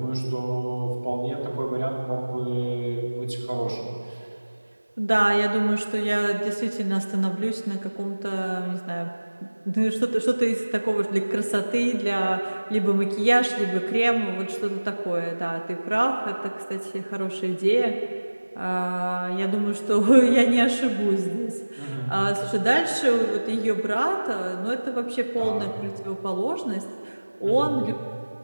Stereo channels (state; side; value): inverted; both; correlation -1.00